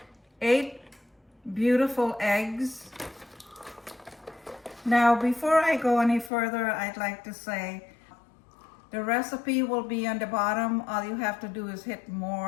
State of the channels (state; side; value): drops out; right; at 6.3 s